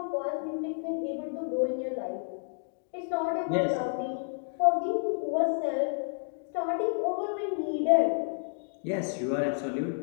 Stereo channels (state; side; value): silent; right; digital silence